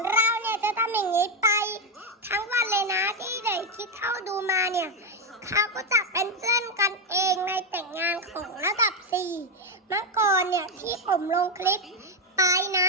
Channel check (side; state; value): both; normal; correlation 0.06